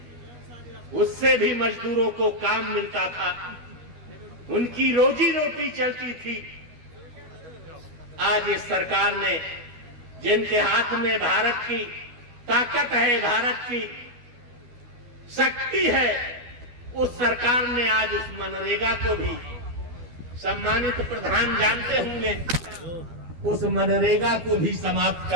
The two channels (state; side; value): late; left; 12 ms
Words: उससे भी मजदूरों को काम मिलता था, उनकी रोजी रोटी चलती थी। आज इस सरकार ने, जिनके हाथ में भारत की ताकत है, भारत की शक्ति है, उस सरकार ने आज उस मनरेगा को भी, सम्मानित प्रधान जानते होंगे, उस मनरेगा को भी समाप्त